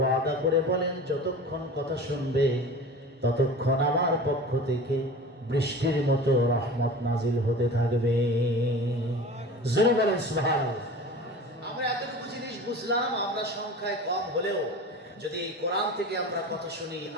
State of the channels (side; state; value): both; normal; correlation 0.36